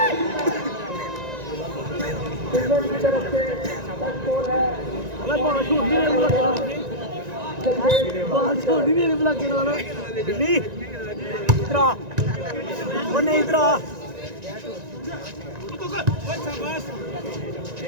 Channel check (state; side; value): late; left; 1.9 ms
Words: ਬਾਲ ਛੋੜੀ ਨਹੀਂ ਬਲਾ ਕੇ ਲਾਣਾ ਬਿੱਲੀ ਇਧਰ ਆ ਉਹ ਨਹੀਂ ਇਧਰ ਆ